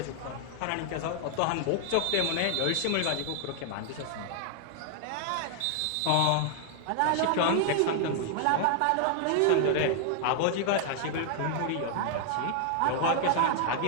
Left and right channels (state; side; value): different; both; correlation 0.00